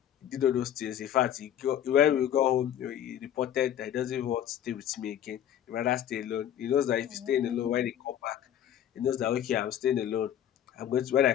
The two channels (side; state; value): right; quieter; 10.5 dB